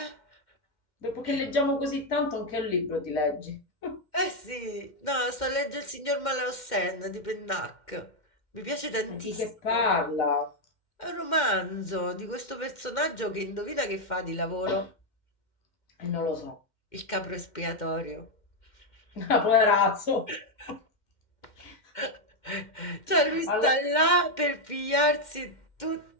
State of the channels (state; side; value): late; right; 2.1 ms